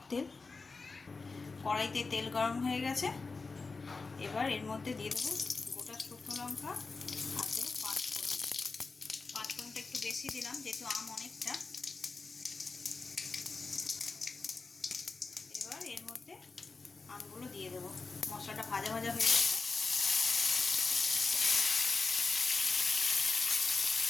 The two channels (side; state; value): right; quieter; 4.1 dB